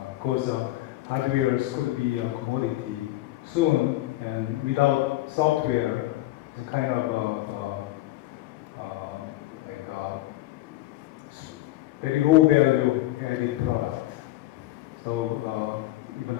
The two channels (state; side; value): quieter; right; 16.6 dB